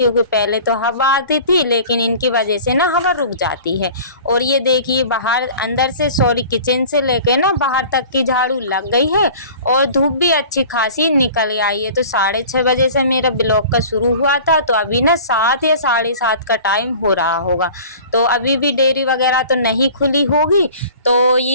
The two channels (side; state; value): both; inverted; correlation -0.43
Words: पहले तो हवा आती थी लेकिन इनकी वजह से ना हवा रुक जाती है। और ये देखिए बाहर अंदर से किचन से लेके ना बाहर तक की झाड़ू लग गई है और धूप भी अच्छी खासी निकल आई है। तो 6:30 बजे से मेरा ब्लॉग का शुरू हुआ था, तो अभी ना 7 या 7:30 का टाइम हो रहा होगा। तो अभी भी डेयरी वगैरह तो नहीं खुली होगी। तो